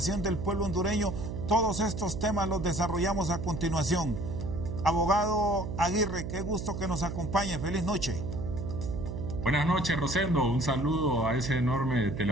del pueblo hondureño? Todos estos temas los desarrollamos a continuación. Abogado Aguirre, qué gusto que nos acompañe. Feliz noche. Buenas noches, Rosendo. Un saludo a ese enorme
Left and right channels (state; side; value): noise; right; hum, 5 dB below the sound